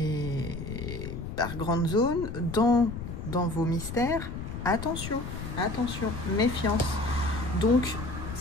par grande zone, dans vos mystères, attention, attention, méfiance. Donc,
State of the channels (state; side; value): noise; left; rumble, 7 dB below the sound